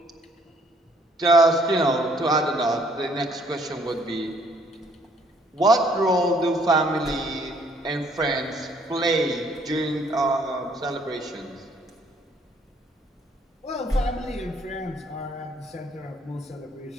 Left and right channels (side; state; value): both; normal; correlation 0.64